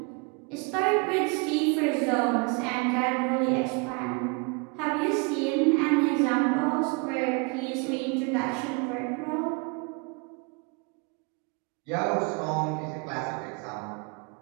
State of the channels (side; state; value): left; quieter; 31.7 dB